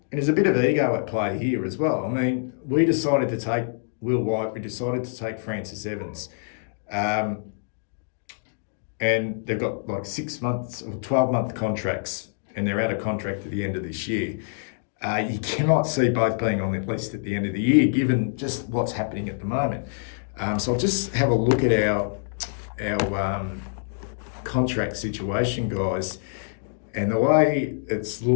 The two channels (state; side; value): silent; right; digital silence